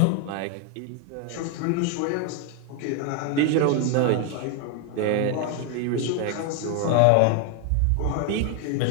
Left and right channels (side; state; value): both; different; correlation 0.01